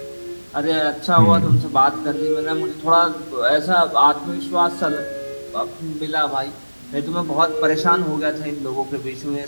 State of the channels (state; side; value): inverted; both; correlation -1.00